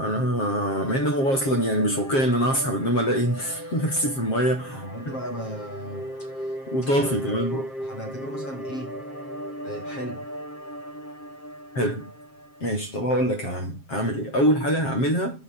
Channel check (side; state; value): right; late; 7.5 ms